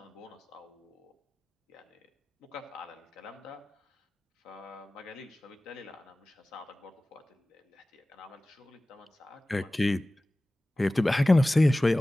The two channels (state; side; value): normal; both; correlation 0.98